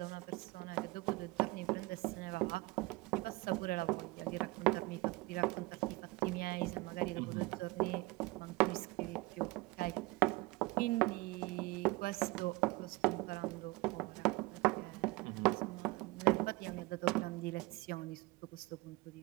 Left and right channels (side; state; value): left; quieter; 22.5 dB